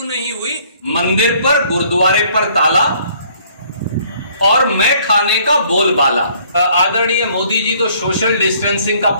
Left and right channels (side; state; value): both; inverted; correlation -0.61